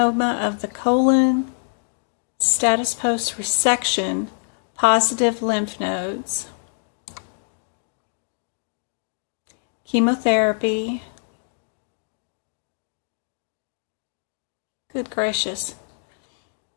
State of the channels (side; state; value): right; silent; 62 dB below the other